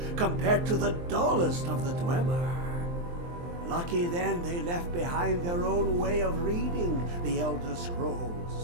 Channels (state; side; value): late; left; 23 ms